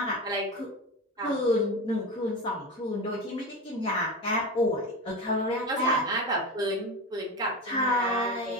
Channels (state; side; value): normal; both; correlation 0.23